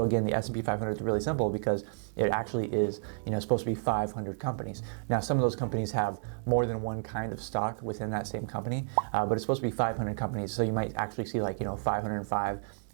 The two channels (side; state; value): left; silent; digital silence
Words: again, the S&P 500 is really simple because it actually is supposed to be 500 companies. Now, some of those companies have more than one kind of stock within that same company, but it's supposed to be 500 companies. So you might actually see 505.